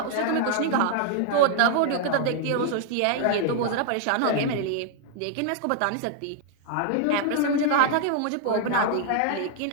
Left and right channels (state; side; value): different; both; correlation 0.00